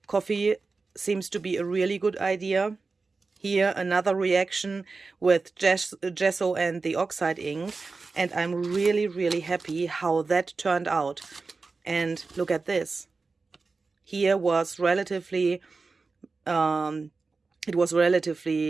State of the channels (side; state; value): left; quieter; 4.1 dB